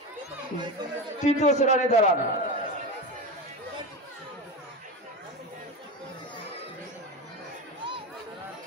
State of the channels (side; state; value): both; normal; correlation 0.22